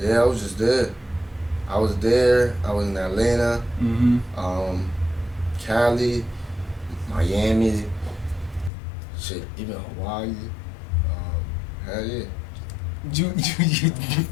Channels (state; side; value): drops out; right; at 8.7 s